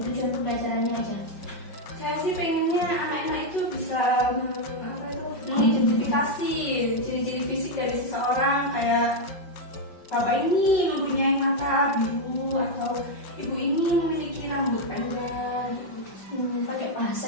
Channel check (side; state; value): right; late; 5.3 ms